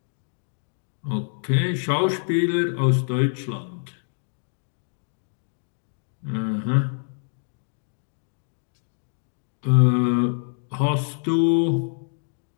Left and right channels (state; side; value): silent; right; digital silence